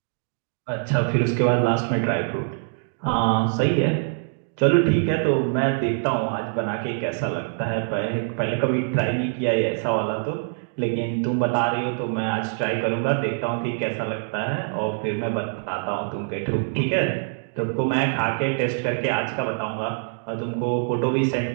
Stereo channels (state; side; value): silent; left; digital silence